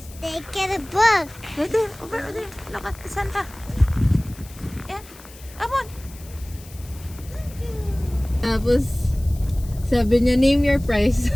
They get a book. There, over there. Look at the Santa. Yeah. Come on. Tapos, sabi niya, name your price.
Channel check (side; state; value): left; noise; hiss, 21 dB below the sound